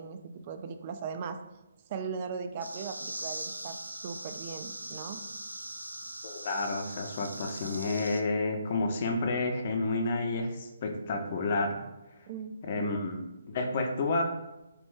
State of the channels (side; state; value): both; inverted; correlation -0.69